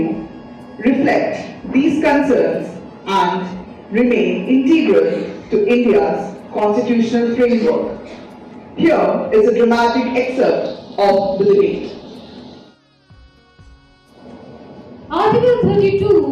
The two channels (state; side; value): identical; both; correlation 1.00